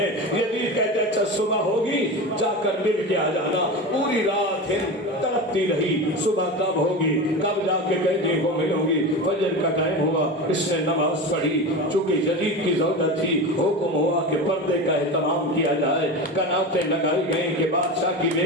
یزید کہتے ہیں اچھا صبح ہوگی جا کر مل کے آ جانا۔ پوری رات ہند تڑپتی رہی، صبح کب ہوگی، کب جا کے قیدیوں کو ملوں گی۔ فجر کا ٹائم ہوا، اس نے نماز پڑھی، چونکہ یزید کی زوجہ تھی، حکم ہوا کہ پردے کا اہتمام کیا جائے، کناتیں لگائی گئیں کہ بادشاہ کی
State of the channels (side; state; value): both; normal; correlation 0.26